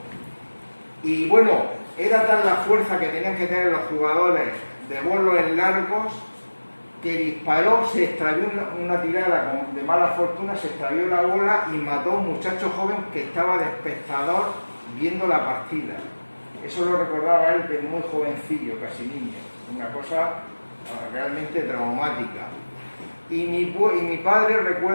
Y bueno, era tal la fuerza que tenían que tener los jugadores de bolos en largos, que disparó, se extravió una tirada de mala fortuna, se extravió la bola y mató a un muchacho joven que estaba de espectador viendo la partida. Eso lo recordaba él de muy jovencillo, casi niño, una cosa realmente traumática. Y mi padre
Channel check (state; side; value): inverted; both; correlation -1.00